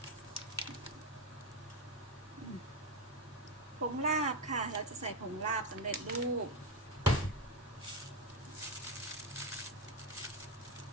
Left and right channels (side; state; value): both; normal; correlation 0.11